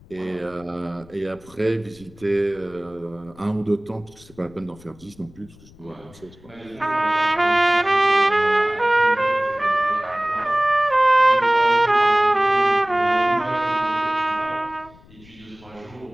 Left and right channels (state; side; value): noise; left; rumble, 24 dB below the sound